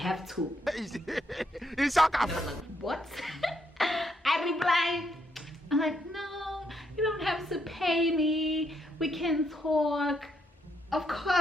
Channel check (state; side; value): normal; both; correlation 0.76